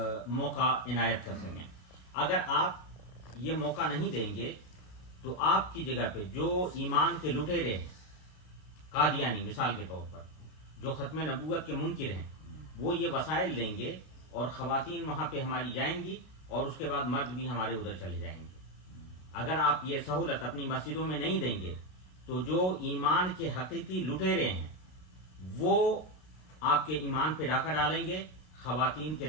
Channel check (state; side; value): late; right; 32 ms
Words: موقع عنایت کر سکیں. اگر آپ یہ موقع نہیں دیں گے تو آپ کی جگہ پہ جو ایمان کے لٹیرے ہیں، قادیانی مثال کے طور پر، جو ختم نبوت کے منکر ہیں، وہ یہ وسائل لیں گے اور خواتین وہاں پہ ہماری جائیں گی اور اس کے بعد مرد بھی ہمارے ادھر چلے جائیں گے. اگر آپ یہ سہولت اپنی مسجدوں میں نہیں دیں گے تو جو ایمان کے حقیقی لٹیرے ہیں وہ آپ کے ایمان پہ ڈاکہ ڈالیں گے خواتین کے